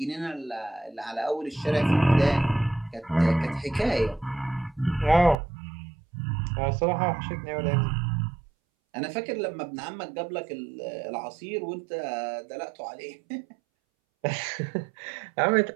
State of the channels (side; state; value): left; drops out; at 5.4 s